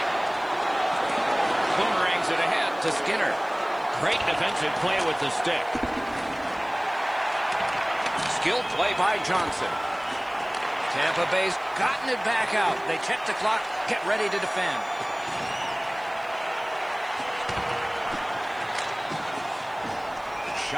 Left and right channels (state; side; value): noise; right; hiss, 29 dB below the sound